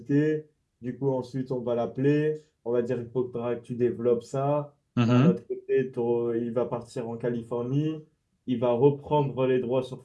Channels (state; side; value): identical; both; correlation 1.00